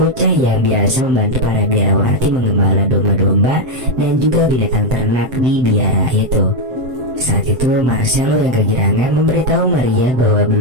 yang biasa membantu para biarawati menggembala domba-domba dan juga binatang ternak di biara itu. Saat itu Marcelo yang kegirangan memberitahu Maria bahwa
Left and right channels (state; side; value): late; left; 7.7 ms